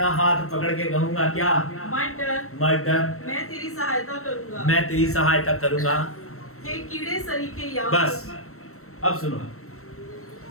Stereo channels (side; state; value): right; late; 0.63 ms